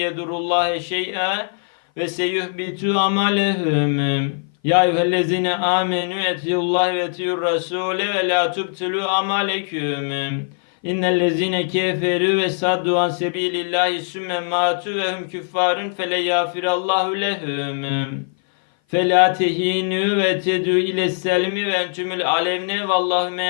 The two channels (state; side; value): silent; right; 58 dB below the other